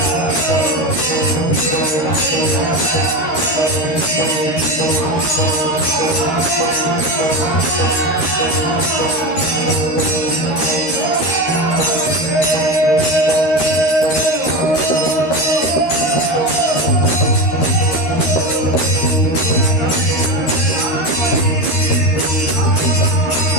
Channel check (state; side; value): late; right; 13 ms